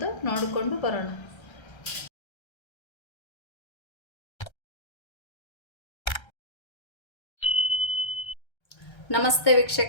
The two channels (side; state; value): right; late; 1.3 ms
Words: ನೋಡಿಕೊಂಡು ಬರೋಣ. ನಮಸ್ತೆ